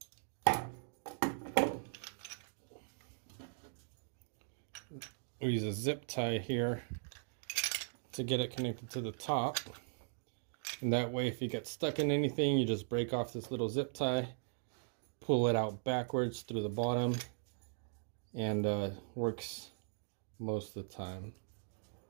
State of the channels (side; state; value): left; silent; digital silence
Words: zip tie here to get it connected to the top. And that way if you get stuck in anything, you just break off this little zip tie pull it out backwards through the bottom, and works most of the time.